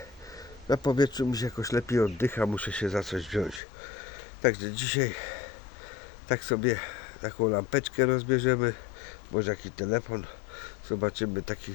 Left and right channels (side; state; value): right; drops out; at 3.6 s